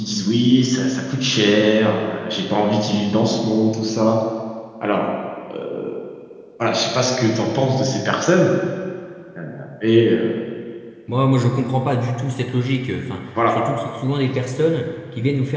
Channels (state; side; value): identical; both; correlation 1.00